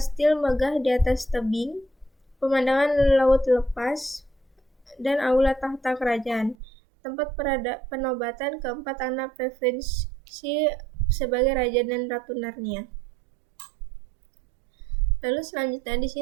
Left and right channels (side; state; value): left; drops out; at 6.6 s